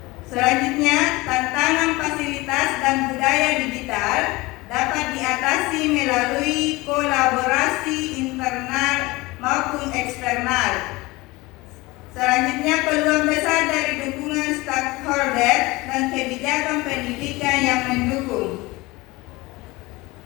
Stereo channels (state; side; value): quieter; right; 21.9 dB